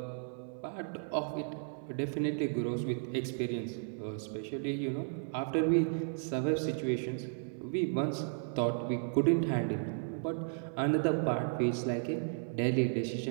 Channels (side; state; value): left; silent; 55 dB below the other